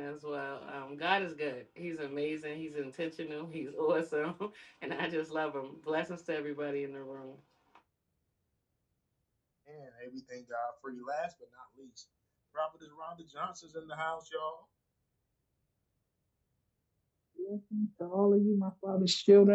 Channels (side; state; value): both; identical; correlation 1.00